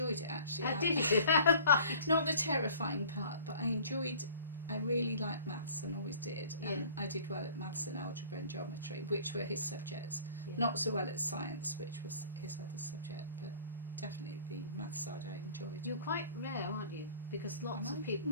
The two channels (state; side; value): inverted; both; correlation -0.48